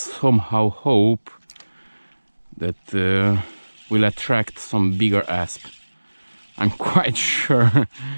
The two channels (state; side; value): inverted; both; correlation -1.00